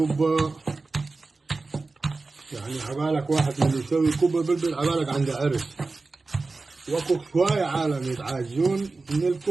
يعني عبالك واحد من اللي يسوي كبة بلبل عبالك عنده عرس. واكو شوية عالم يتعاجزون من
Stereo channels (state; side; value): quieter; left; 3.7 dB